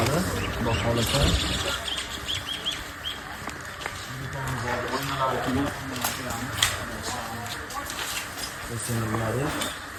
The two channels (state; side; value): identical; both; correlation 1.00